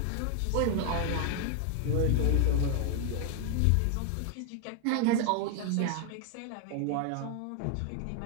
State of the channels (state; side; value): different; both; correlation 0.00